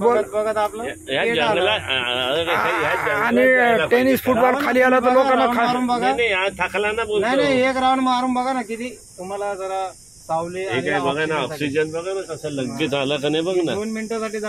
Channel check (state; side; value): noise; right; rumble, 30 dB below the sound